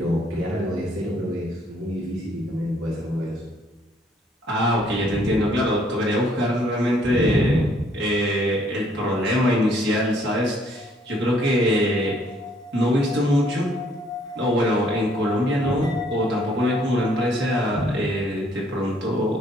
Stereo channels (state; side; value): normal; both; correlation 0.65